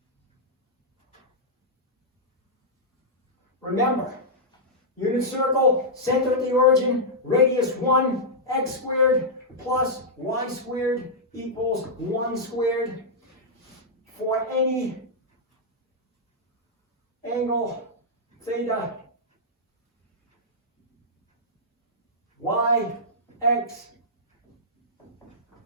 Remember, unit circle, center at the origin, radius 1, x squared plus y squared equals 1 squared. For any angle theta, y, x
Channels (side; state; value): both; normal; correlation -0.09